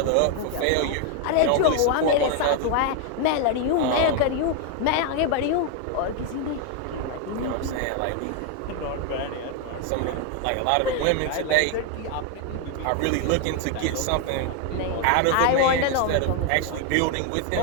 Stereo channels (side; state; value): both; different; correlation 0.01